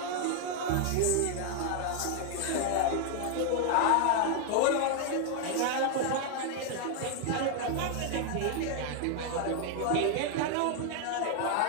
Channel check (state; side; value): different; both; correlation 0.00